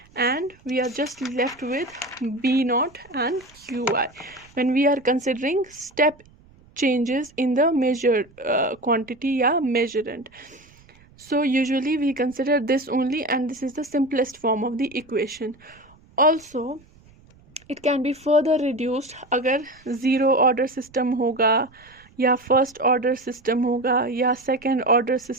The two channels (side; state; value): right; noise; rumble, 28 dB below the sound